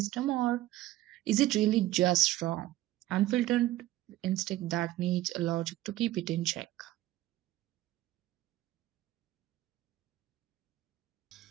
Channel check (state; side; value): quieter; left; 15.7 dB